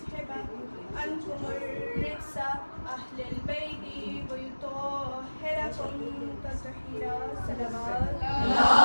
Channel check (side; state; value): both; inverted; correlation -1.00